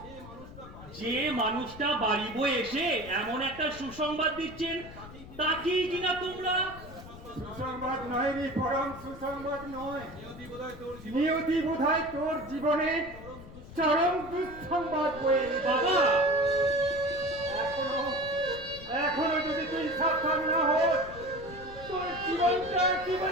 যে মানুষটা বাড়ি বয়ে এসে এমন একটা সুসংবাদ দিচ্ছেন, তাকেই কিনা তোমরা সুসংবাদ নয় রে, পরম সুসংবাদ নয়। নিয়তি বোধহয় তোর জীবনে চরম দুঃসংবাদ বয়ে এনেছে। বাবা এখনো যদি তুই সাবধান না হোস, তোর জীবনটা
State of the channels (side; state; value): left; noise; rumble, 16 dB below the sound